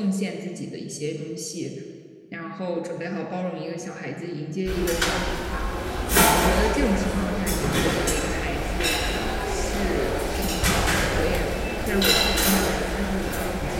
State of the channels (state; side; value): identical; both; correlation 1.00